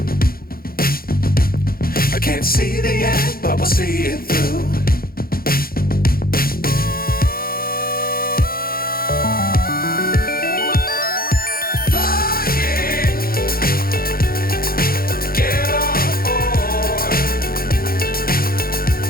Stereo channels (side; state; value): right; late; 0.43 ms